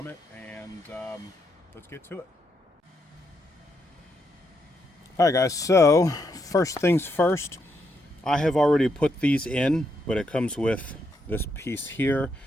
it, and let's get to it. Alright guys, so first things first, I have already put these in, but it comes with this piece here,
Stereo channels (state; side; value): normal; both; correlation 0.79